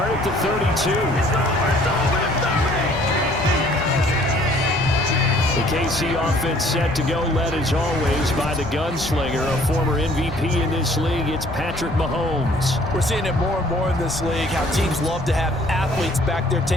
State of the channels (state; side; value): noise; left; rumble, 13 dB below the sound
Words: at the 32. The KC offense set to go, led as always by the gunslinger, a former MVP in this league. It's Patrick Mahomes. We're seeing it more and more in this league, how teams love to have athletes back there